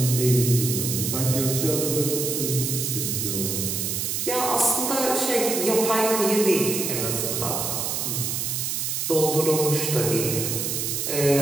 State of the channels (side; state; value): right; noise; hiss, 1 dB below the sound